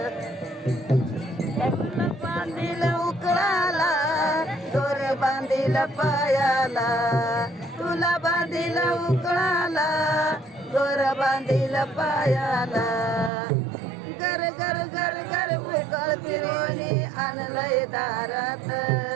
बांधील उकळाला दोर बांधील पायाला. तुला बांधील उकळाला दोर बांधील पायाला. घर घर घर घर उकळ फिरवणी आणलंय दारात.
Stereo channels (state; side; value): drops out; left; at 13.3 s